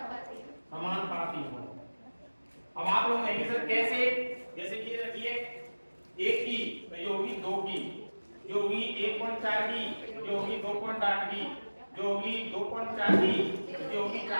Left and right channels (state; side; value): inverted; both; correlation -1.00